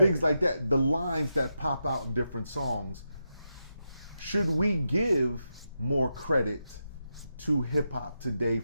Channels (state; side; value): inverted; both; correlation -0.86